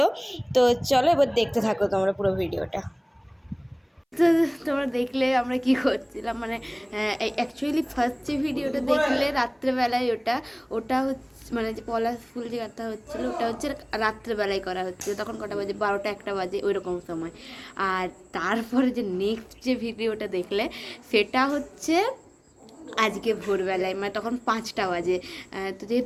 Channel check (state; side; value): identical; both; correlation 1.00